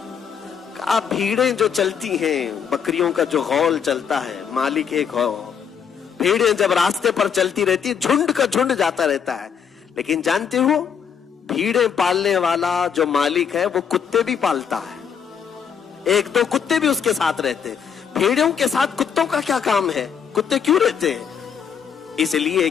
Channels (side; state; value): right; quieter; 7.3 dB